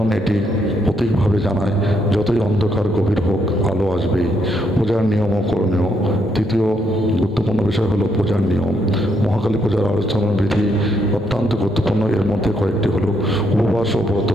এটি প্রতীকভাবে জানায় যতই অন্ধকার গভীর হোক, আলো আসবেই। পূজার নিয়ম ও করণীয়। তৃতীয় গুরুত্বপূর্ণ বিষয় হলো পূজার নিয়ম। মহাকালী পূজার আলোচনা বিধি অত্যন্ত গুরুত্বপূর্ণ। এর মধ্যে কয়েকটি হলো উপবাস ও ব্রত।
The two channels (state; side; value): normal; both; correlation 0.75